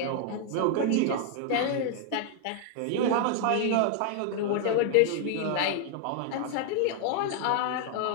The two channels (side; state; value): both; different; correlation 0.00